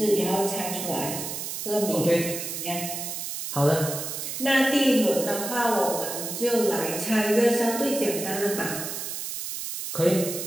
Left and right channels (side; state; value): right; noise; hiss, 5 dB below the sound